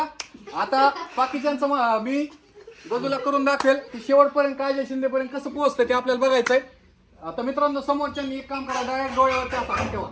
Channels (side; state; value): both; identical; correlation 1.00